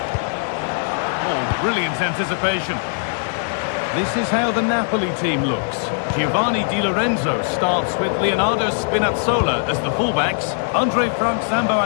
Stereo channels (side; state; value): right; silent; 59 dB below the other